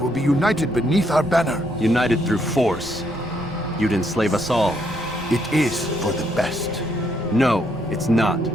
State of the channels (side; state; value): both; normal; correlation 0.74